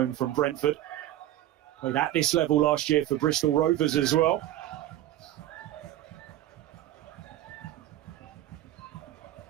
from Brentford. Played at this level last year for Bristol Rovers as well.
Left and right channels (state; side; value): quieter; left; 13.7 dB